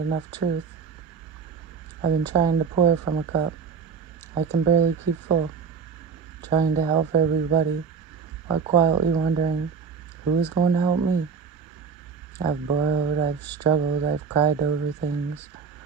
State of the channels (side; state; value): left; quieter; 6.1 dB